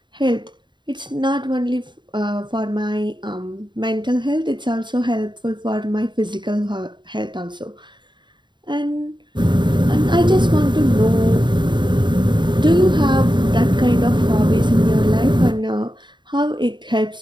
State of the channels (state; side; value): late; left; 0.22 ms